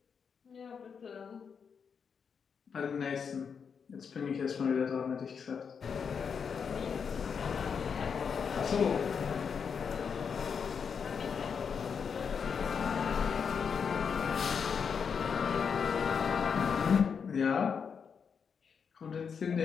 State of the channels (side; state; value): right; quieter; 6.4 dB